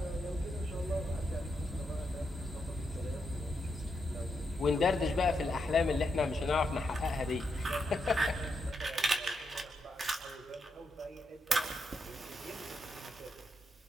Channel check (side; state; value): both; normal; correlation 0.82